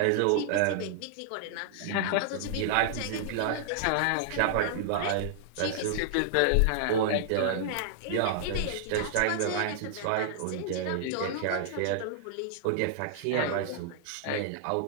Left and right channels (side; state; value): both; different; correlation -0.01